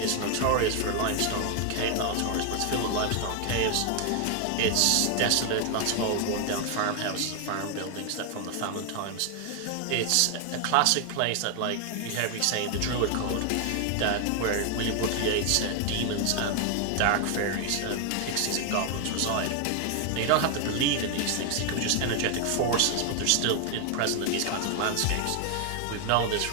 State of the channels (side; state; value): both; different; correlation 0.00